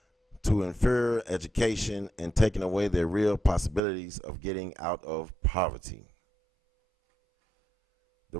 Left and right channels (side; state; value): left; drops out; at 3.8 s